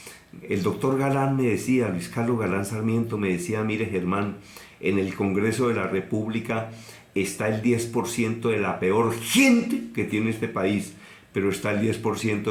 El doctor Galán me decía, Luis Carlos Galán Sarmiento me decía, mire Germán, en el Congreso de la República está el 10% de la peor gente que tiene este país, pero está el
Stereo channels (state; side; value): identical; both; correlation 1.00